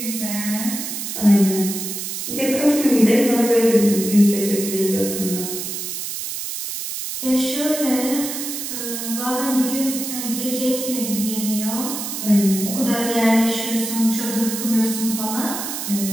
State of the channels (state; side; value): noise; right; hiss, 5 dB below the sound